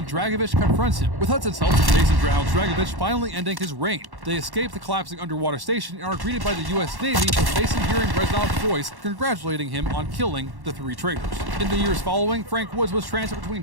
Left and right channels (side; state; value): left; late; 1.1 ms